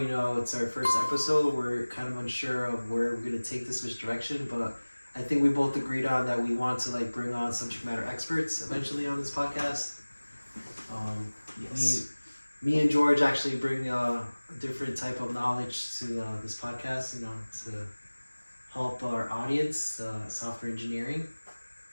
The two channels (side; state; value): both; inverted; correlation -1.00